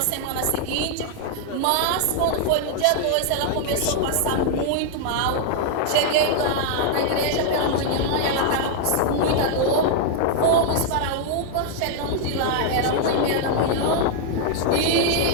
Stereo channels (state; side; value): different; both; correlation 0.00